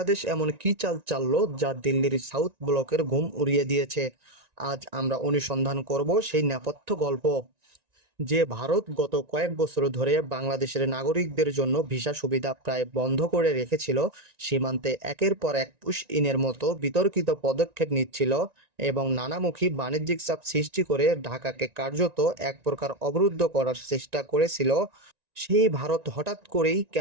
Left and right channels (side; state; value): left; late; 1.9 ms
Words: এমন কী চাল চাললো যা দিল্লির সাউথ ব্লকের ঘুম উড়িয়ে দিয়েছে? আজ আমরা অনুসন্ধান করব সেই নেপথ্য গল্প। যে ভারত গত কয়েক বছর ধরে বাংলাদেশের নাগরিকদের জন্য ভিসা সুবিধা প্রায় বন্ধ করে রেখেছিল, সীমান্তে একের পর এক পুশ ইনের মতো বিতর্কিত পদক্ষেপ নিচ্ছিল এবং নানামুখী বাণিজ্যিক চাপ সৃষ্টি করে ঢাকাকে কার্যত এক প্রকার অবরুদ্ধ করার চেষ্টা করেছিল, সেই ভারত হঠাৎ করেই